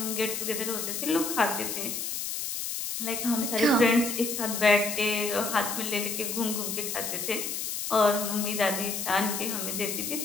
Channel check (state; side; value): noise; left; hiss, 3 dB below the sound